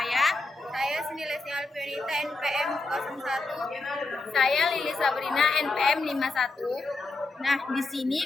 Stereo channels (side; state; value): right; quieter; 3.4 dB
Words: Saya Senilesi Alfionita, NPM 01. Saya Lili Sabrina, NPM 51. Nah, di sini